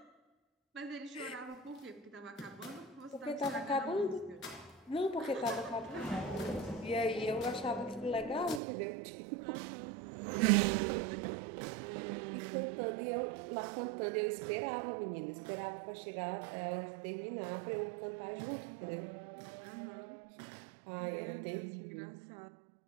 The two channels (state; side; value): drops out; left; at 8.6 s